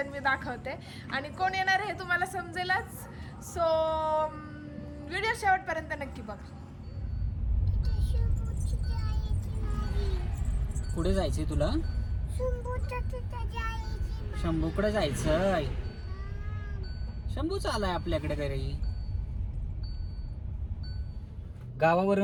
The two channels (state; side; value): identical; both; correlation 1.00